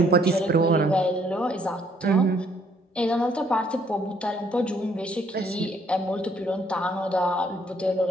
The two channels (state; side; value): normal; both; correlation 0.66